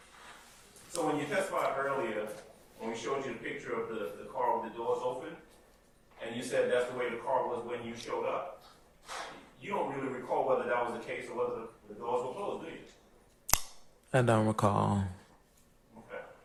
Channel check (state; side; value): identical; both; correlation 1.00